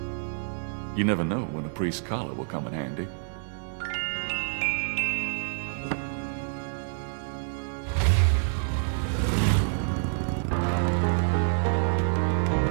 You never know when a priest's collar will come in handy.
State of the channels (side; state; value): left; silent; digital silence